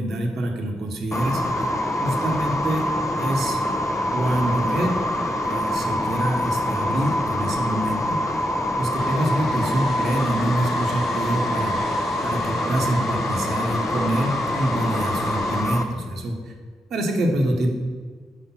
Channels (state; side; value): normal; both; correlation 0.84